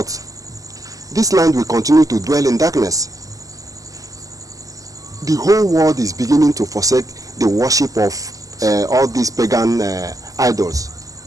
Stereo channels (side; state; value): left; late; 0.17 ms